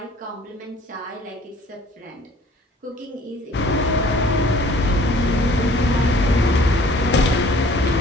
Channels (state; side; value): normal; both; correlation 0.53